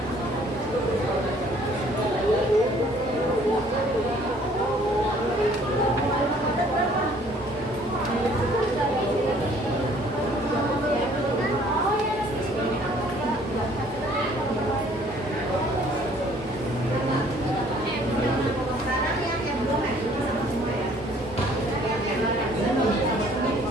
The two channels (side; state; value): both; normal; correlation 0.58